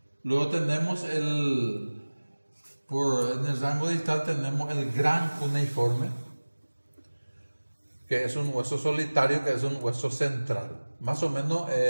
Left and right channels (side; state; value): both; inverted; correlation -1.00